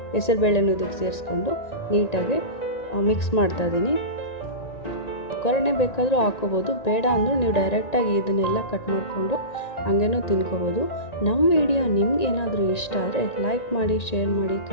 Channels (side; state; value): right; late; 1.9 ms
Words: ಹೆಸರುಬೇಳೆನೂ ಇದಕ್ಕೆ ಸೇರಿಸ್ಕೊಂಡು ನೀಟಾಗಿ ಮಿಕ್ಸ್ ಮಾಡ್ತಾಯಿದ್ದೀನಿ. ಒಗ್ಗರಣೆ ಬೇಕಾದರೂ ಹಾಕ್ಕೋಬೋದು, ಬೇಡ ಅಂದರೂ ನೀವು ಡೈರೆಕ್ಟಾಗಿ ಇದನ್ನೆಲ್ಲ ಕಟ್ ಮಾಡಿಕೊಂಡು ಹಂಗೇನೂ ತಿನ್ಕೋಬೋದು. ನಮ್ಮ ವಿಡಿಯೋ ನಿಮ್ಗೆ ಏನಾದರೂ ಇಷ್ಟ ಆದರೆ ಲೈಕ್ ಮಾಡಿ, ಶೇರ್ ಮಾಡಿ,